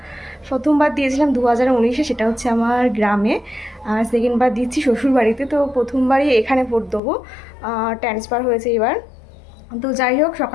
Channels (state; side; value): drops out; right; at 7.0 s